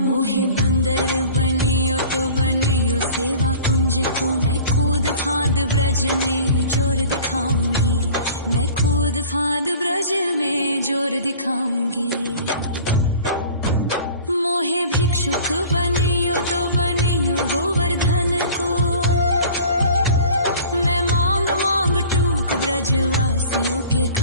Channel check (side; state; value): both; inverted; correlation -0.45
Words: मोहे बंदर बनियो तो बनियो सेवा कुंज को मैं कूद फाद ब्रज में जोर दिखाऊंगी, मैं कूद फाद ब्रज में जोर दिखाऊंगी। मोहे भिक्षुक बनियो तो बनियो गोवर्धन को, मैं मांग मांग टूक ब्रजवासियों के